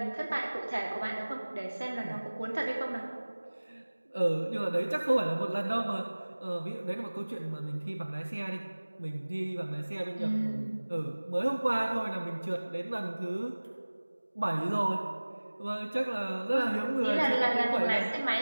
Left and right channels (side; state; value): both; inverted; correlation -1.00